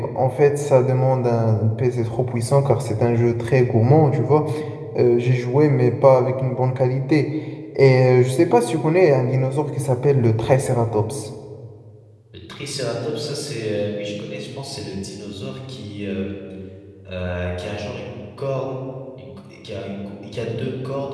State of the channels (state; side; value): identical; both; correlation 1.00